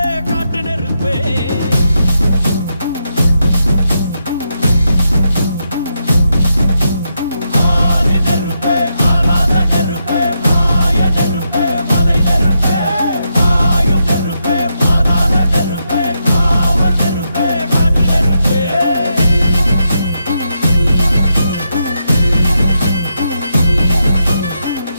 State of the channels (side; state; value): both; inverted; correlation -0.82